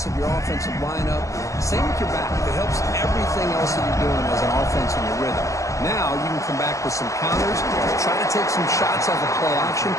of your offensive lineup. Same with your back. It helps everything else that you're doing as an offense in your rhythm. Now you can come back with some counters, try to take some shots off of play action,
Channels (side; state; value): right; late; 0.16 ms